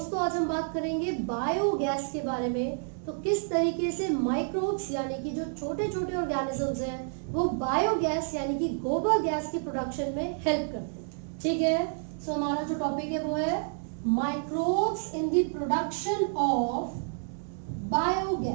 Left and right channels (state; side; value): silent; left; digital silence